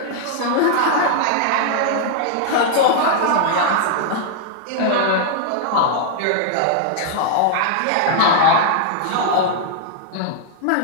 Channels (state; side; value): different; both; correlation -0.01